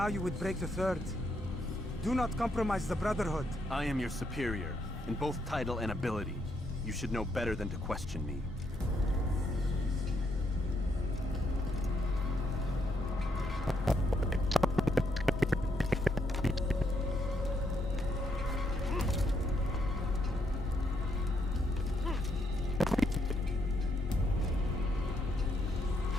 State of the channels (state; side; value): normal; both; correlation 0.76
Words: you would break the 3rd. Do not compromise the Brotherhood. I am your superior, in both title and ability. You should know better than to question me.